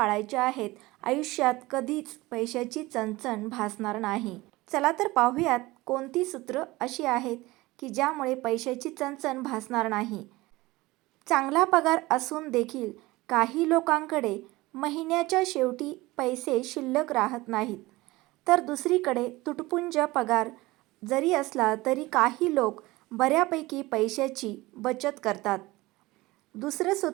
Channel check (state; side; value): quieter; left; 20.2 dB